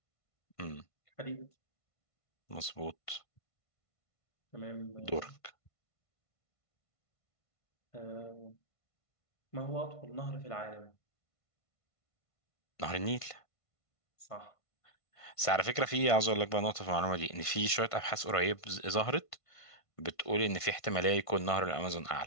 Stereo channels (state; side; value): late; right; 1.5 ms